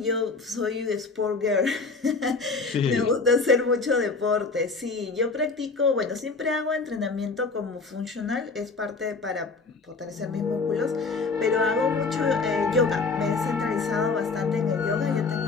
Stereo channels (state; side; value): quieter; right; 4.1 dB